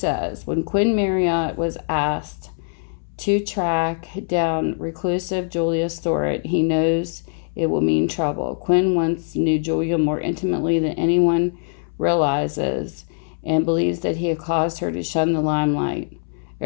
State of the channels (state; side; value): silent; right; 64 dB below the other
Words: when Quinn Marriott was asked to track down reclusive Julia Storett, he knows it will mean trouble. Quinn once knew Julia more intimately than anyone realizes and believes that he had caused her to shun the limelight.